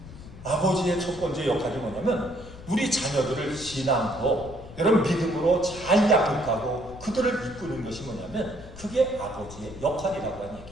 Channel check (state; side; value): noise; left; rumble, 16 dB below the sound